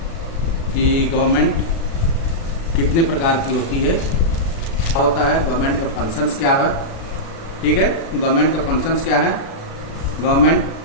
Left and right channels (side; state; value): right; late; 36 ms